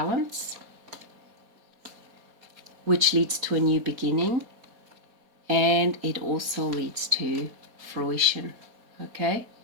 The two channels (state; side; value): late; left; 4.2 ms